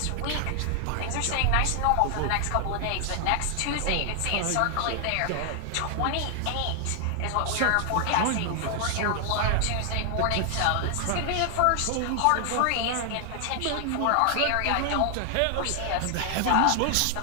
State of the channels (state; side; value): different; both; correlation 0.00